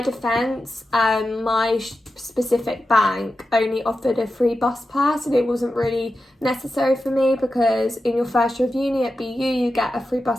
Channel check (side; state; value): both; normal; correlation 0.91